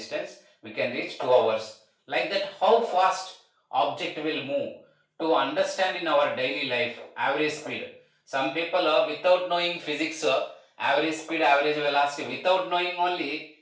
We can reach 2 hours. Like that, how fast object will move to understand in our daily life average speed. Some people without knowing physics, average speed, average velocity, without knowing only,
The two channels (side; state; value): both; identical; correlation 1.00